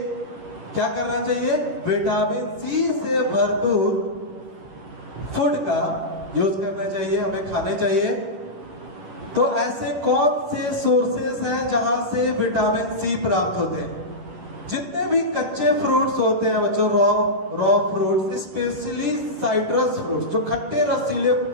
क्या करना चाहिए? विटामिन सी से भरपूर फूड का यूज करना चाहिए, हमें खाने चाहिए। तो ऐसे कौन से सोर्सेस हैं जहां से विटामिन सी प्राप्त होते हैं? जितने भी कच्चे फ्रूट्स होते हैं बच्चों, raw fruits, specially citrus fruits, जो खट्टे रसीले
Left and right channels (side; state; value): left; late; 11 ms